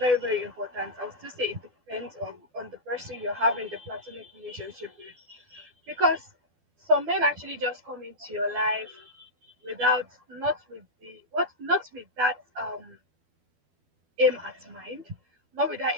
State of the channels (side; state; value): left; late; 12 ms